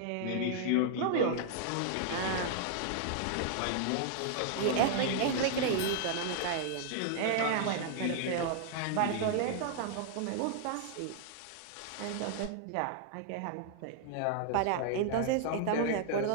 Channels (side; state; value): both; different; correlation 0.00